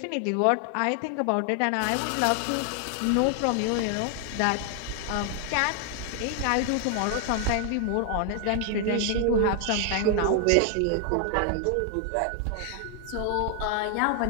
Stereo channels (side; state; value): both; different; correlation 0.00